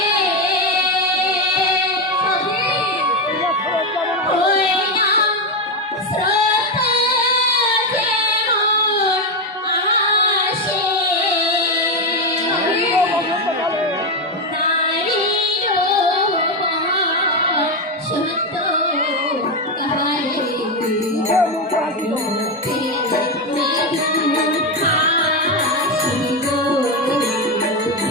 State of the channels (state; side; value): normal; both; correlation 0.09